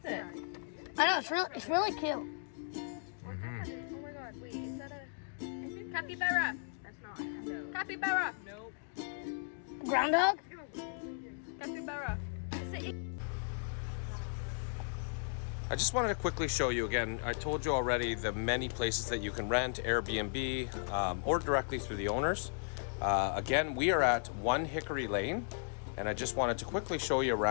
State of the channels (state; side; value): silent; right; digital silence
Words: it? I know, it's really cute. Mm-hmm. Capybara. That's not. No. Capybara. Nope. Groundhog? Capybara. I just wanted to quickly show you again. I told you already the many places that you can rent, Airbnb, or directly through the owners. Again, we are at 1 Hickory Lane, and I just wanted to quickly show you